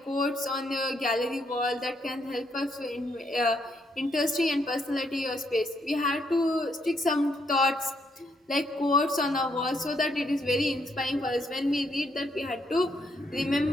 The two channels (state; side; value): normal; both; correlation 0.74